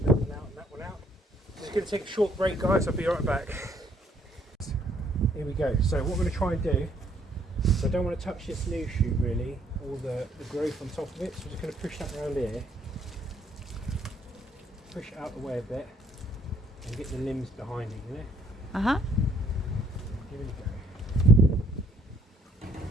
out, and that one out. Just going to take a short break, guys. I'll be right back. Here we go. So what we're going to try and do, so I don't want to touch this new shoot really, all the growth on top of it. So we're just going to push that around here, push it out the way a bit, and get the limbs behind it, you know? Uh-huh. Here we go.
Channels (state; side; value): normal; both; correlation 0.65